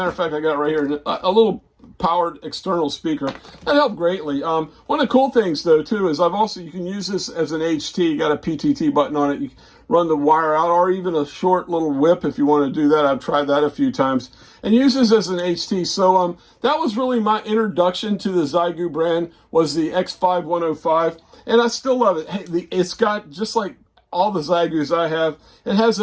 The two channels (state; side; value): identical; both; correlation 1.00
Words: of fact, I got it right here, a little powered external speaker. That helped greatly. One of the cool things though too is you can use this as an HT. You got a PTT button on it. You run the wire out, or even a short little whip if you want to do that. I've tried that a few times, and use this as an HT. So that was really my introduction to the Xiegu brand, was the X5100, and I still love it. Hey, it's got, just like all the Xiegus I have, it has